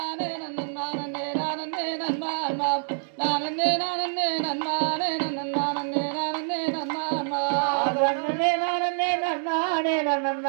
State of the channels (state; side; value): silent; left; digital silence